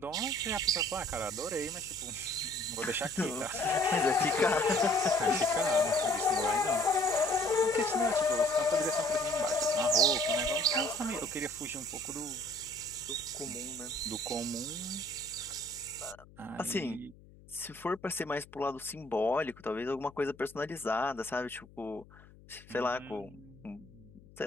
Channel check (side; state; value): left; noise; hum, 23 dB below the sound